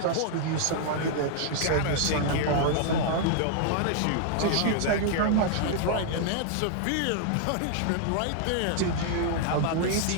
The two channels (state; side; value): different; both; correlation -0.01